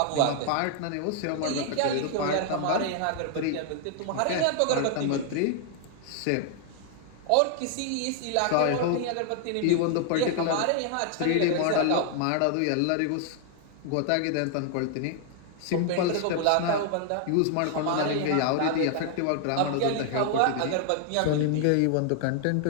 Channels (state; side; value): different; both; correlation 0.00